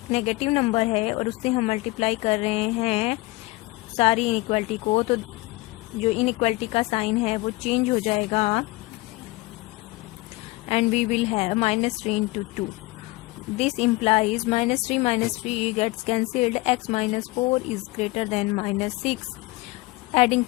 नेगेटिव नंबर है और उससे हम मल्टीप्लाई कर रहे हैं सारी इनइक्वालिटी को, तो जो इनइक्वालिटी का साइन है वो चेंज हो जाएगा and we will have -3 into 2. This implies -3 minus 3 gets cancelled. X minus 4 is greater than -6. Adding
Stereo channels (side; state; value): right; quieter; 21.7 dB